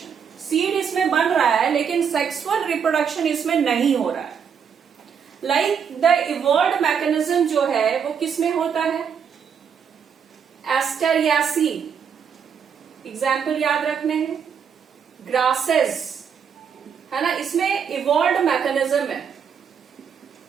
Seed इसमें बन रहा है लेकिन सेक्सुअल रिप्रोडक्शन इसमें नहीं हो रहा है। लाइक द इवॉल्व्ड मैकेनिज्म जो है वो किसमें होता है? एस्टेरियासी, एग्जाम्पल याद रखने हैं। ग्रासेस है ना, इसमें इवॉल्व्ड मैकेनिज्म है,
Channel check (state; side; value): quieter; left; 7.1 dB